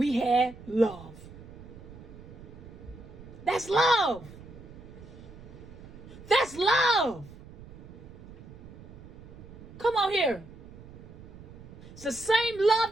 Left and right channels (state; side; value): noise; right; rumble, 17 dB below the sound